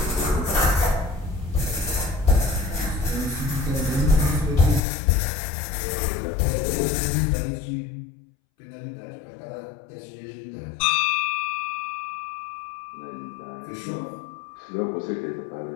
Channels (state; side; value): drops out; right; at 4.8 s